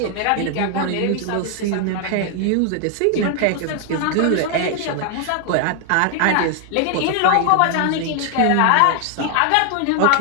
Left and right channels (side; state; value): both; different; correlation 0.00